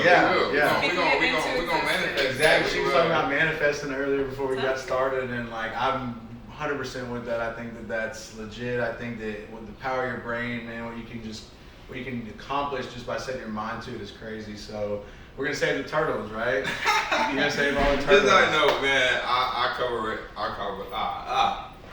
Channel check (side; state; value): both; identical; correlation 1.00